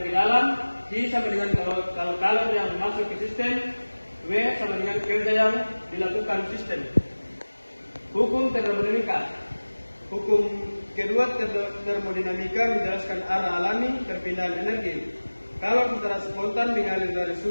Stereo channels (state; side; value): inverted; both; correlation -1.00